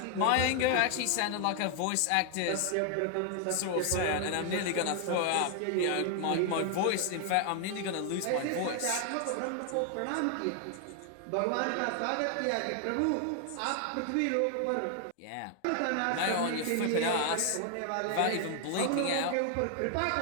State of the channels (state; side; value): different; both; correlation 0.00